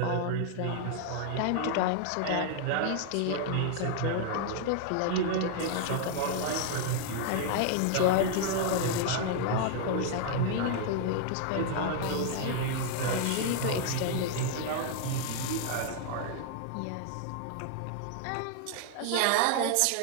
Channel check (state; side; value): different; both; correlation 0.00